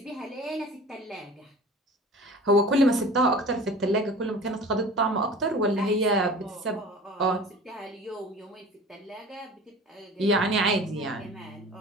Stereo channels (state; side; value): normal; both; correlation 0.41